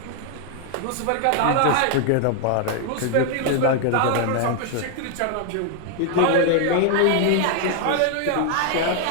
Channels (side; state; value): both; different; correlation 0.00